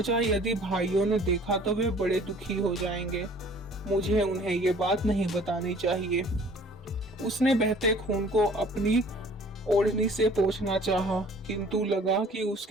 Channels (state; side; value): normal; both; correlation 0.52